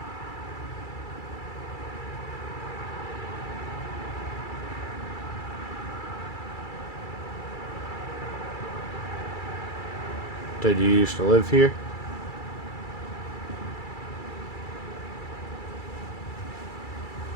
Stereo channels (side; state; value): right; late; 2.3 ms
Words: Did you used to live here?